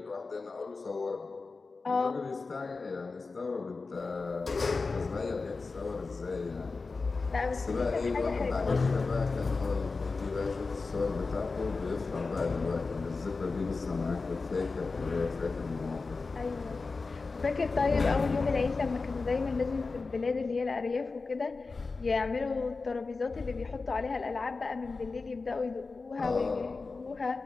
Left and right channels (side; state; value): right; quieter; 4.1 dB